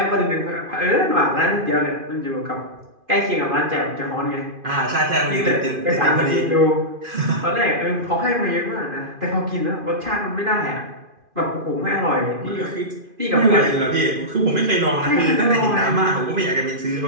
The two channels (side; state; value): left; late; 2.5 ms